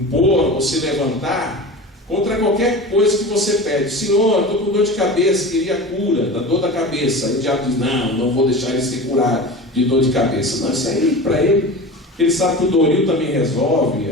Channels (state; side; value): normal; both; correlation 0.32